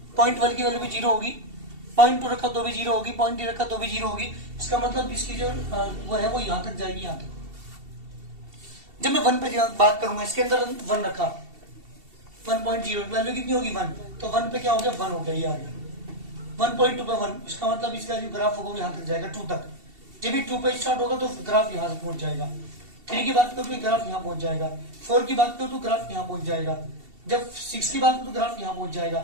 0.1 की वैल्यू भी 0 होगी, 0.2 रखा तो भी 0 होगी, 0.3 रखा तो भी 0 होगी। इसका मतलब इसकी जो वो है वो यहां तक जाएगी, यहां तक। जब मैं 1 पे बात करूंगा, इसके अंदर 1 रखा, 1.0 वैल्यू कितनी होगी 1, तो 1 पे क्या हो गया 1 हो गया, ये आ गया। 1.2 पे 1, इसका मतलब इसका जो ग्राफ होगा वो यहां तक जाएगा 2 तक। जब भी 2 पे स्टार्ट होगा तो ग्राफ यहां से पहुंच जाएगा। 3 की बात करो तो ग्राफ यहां पहुंच जाएगा, 4 की बात करो तो ग्राफ यहां पहुंच जाएगा, जब 6 की बात करो तो ग्राफ यहां पहुंच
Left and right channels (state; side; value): late; left; 2.7 ms